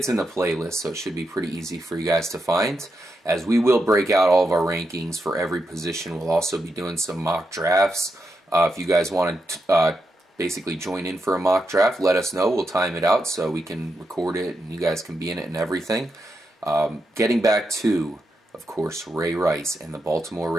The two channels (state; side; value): normal; both; correlation 0.85